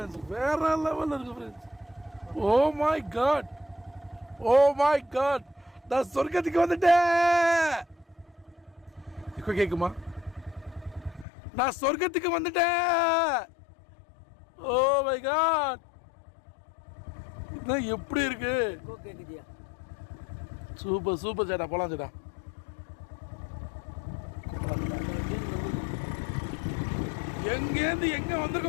வேற லெவலில் இருக்கு friends. Oh my god, oh my god, நான் சொர்க்கத்துக்கு வந்துட்டேன். இப்போ கேட்குமா? நான் சொர்க்கத்துக்கு வந்துட்டேன். ஓ மை காட், இதான் எப்படி இருக்கு? சூப்பர் சூப்பர் சேட்டா, போலாம் சேட்டா. எங்கேருந்து எங்க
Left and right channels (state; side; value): drops out; right; at 11.2 s